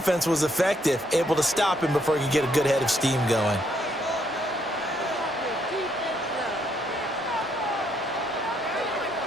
was effective, able to stop him before he could get a good head of steam going.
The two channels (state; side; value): normal; both; correlation 0.72